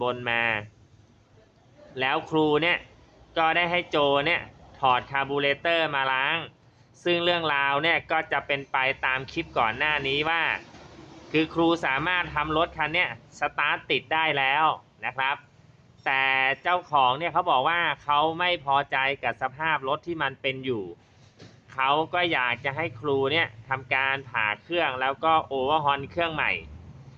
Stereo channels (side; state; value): both; identical; correlation 1.00